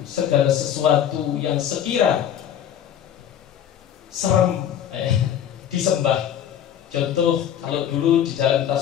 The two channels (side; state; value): right; quieter; 9.8 dB